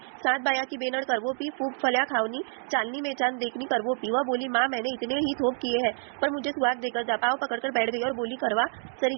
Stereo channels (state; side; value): silent; left; 58 dB below the other